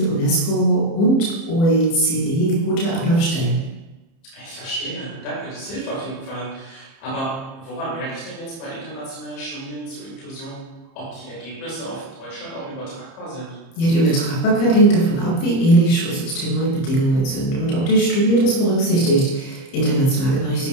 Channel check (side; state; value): right; late; 30 ms